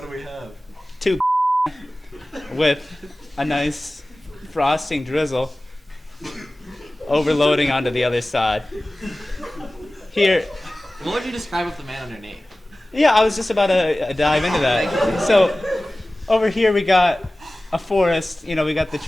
we have? 2 with a nice frosting drizzle overloading onto the other side. Here, What would you describe with the man underneath? yeah, I was just about to dive into that. So, over here we got a forest, we got the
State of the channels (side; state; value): both; normal; correlation 0.97